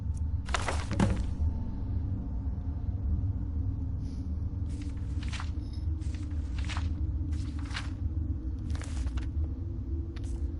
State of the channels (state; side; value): identical; both; correlation 1.00